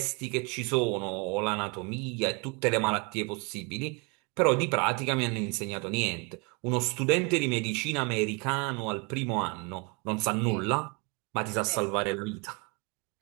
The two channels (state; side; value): quieter; left; 31.1 dB